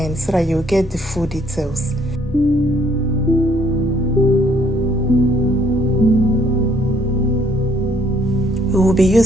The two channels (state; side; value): normal; both; correlation 0.64